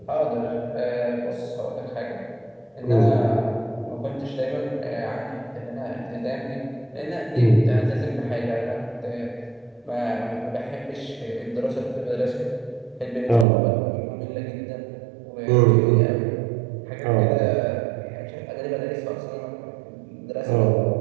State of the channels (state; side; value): drops out; left; at 13.5 s